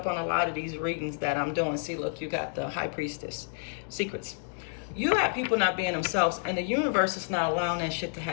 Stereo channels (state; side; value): silent; right; digital silence